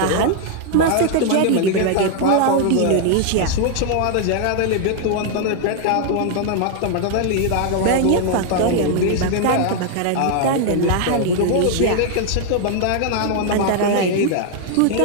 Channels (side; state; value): both; different; correlation 0.00